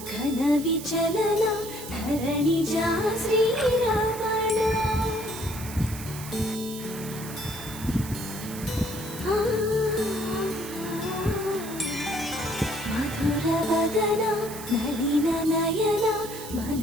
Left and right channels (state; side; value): noise; right; hiss, 12 dB below the sound